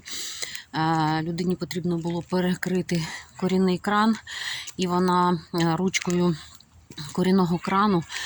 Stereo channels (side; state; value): both; identical; correlation 1.00